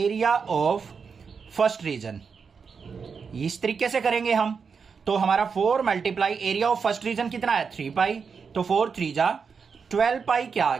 of first region. इस तरीके से करेंगे हम। तो हमारा 4 multiply area of first region कितना है? 3π। तो 4 3 जा 12π क्या आ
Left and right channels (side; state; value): left; quieter; 5.8 dB